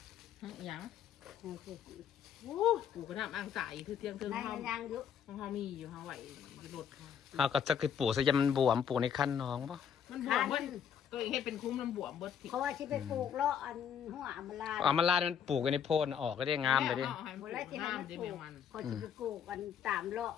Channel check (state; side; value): quieter; right; 8.1 dB